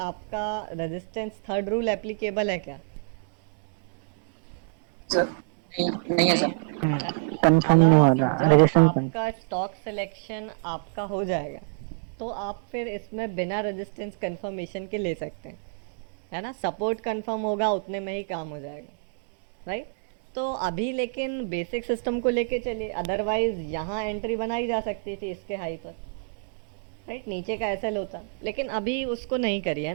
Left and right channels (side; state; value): left; silent; digital silence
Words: रेजिस्टेंस थर्ड रूल एप्लीकेबल है क्या? नहीं है सर कंफर्म नहीं हो रहा रेजिस्टेंस आपका स्टॉक सिलेक्शन आपका हो जाएगा तो आप फिर इसमें बिना रेजिस्टेंस कंफर्मेशन के ले सकते हैं, है ना? सपोर्ट कंफर्म होगा उतने में ही काम हो जाएगा, राइट? तो अभी लेकिन बेसिक सिस्टम को लेके चलिए, अदरवाइज यहाँ एंट्री बनाई जा सकती थी इसके हाई पर, राइट? नीचे का एसएल होता, लेकिन अभी उसको नहीं करी है